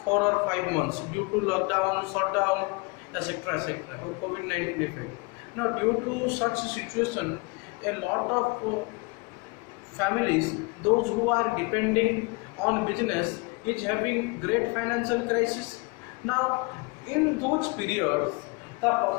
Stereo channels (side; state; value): right; quieter; 28.2 dB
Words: 4 or 5 months due to lockdown, shutdown, etc., or COVID-19 effect. Now, due to such a situation, a lot of families, those who are depending on business, is having great financial crisis. Now, in those periods, the